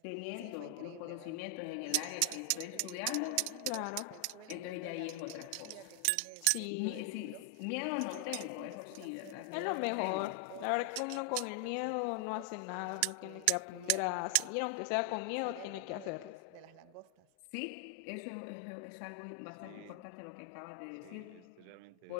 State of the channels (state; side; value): different; both; correlation 0.00